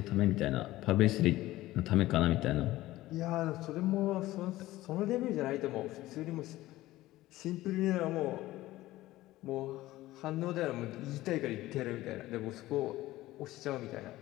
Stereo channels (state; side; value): quieter; right; 16.7 dB